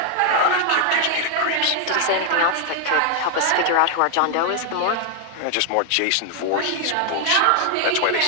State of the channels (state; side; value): different; both; correlation 0.00